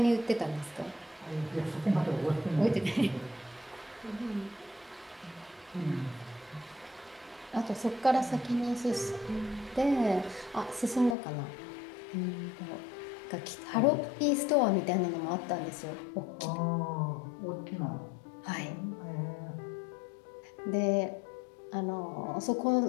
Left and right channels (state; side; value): drops out; right; at 11.2 s